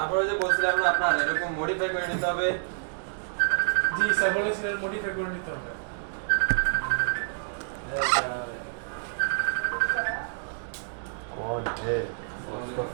যে বলছিলাম না আপনার এরকম মডিফাই করে নিতে হবে। জি স্যার বলেছিলেন মডিফাই করে নিতে হবে। कौन है? उसका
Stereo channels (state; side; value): silent; left; digital silence